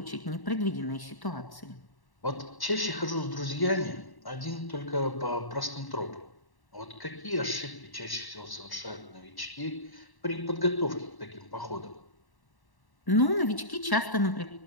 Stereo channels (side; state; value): right; late; 1.1 ms